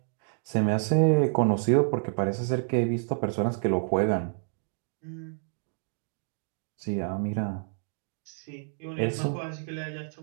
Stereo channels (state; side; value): silent; left; digital silence